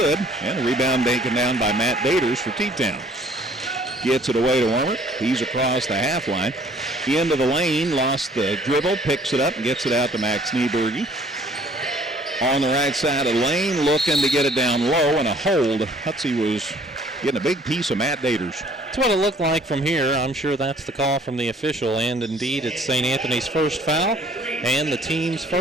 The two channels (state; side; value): normal; both; correlation 0.57